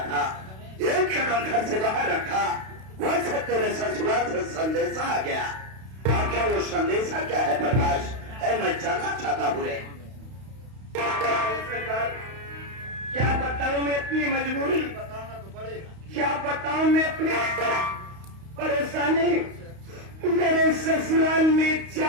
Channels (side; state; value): left; late; 32 ms